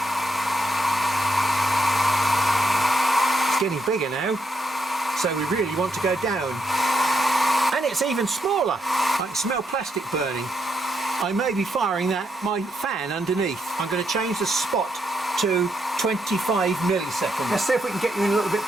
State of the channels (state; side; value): normal; both; correlation 0.79